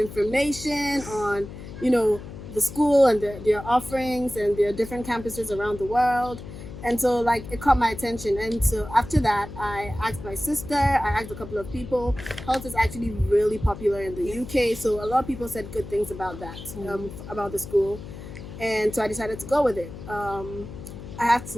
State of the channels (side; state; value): left; noise; hum, 12 dB below the sound